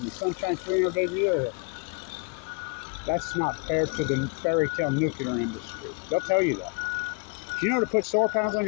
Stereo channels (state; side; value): quieter; right; 33.8 dB